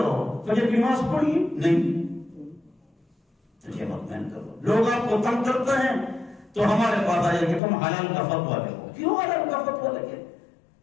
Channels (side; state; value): right; drops out; at 7.6 s